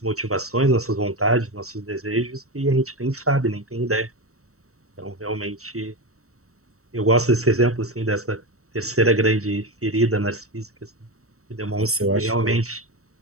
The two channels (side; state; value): left; late; 0.64 ms